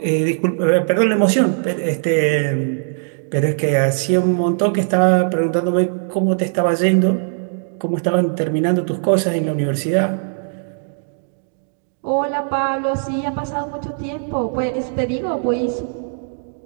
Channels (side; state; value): left; silent; digital silence